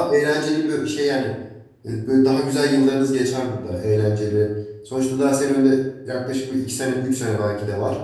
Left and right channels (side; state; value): both; identical; correlation 1.00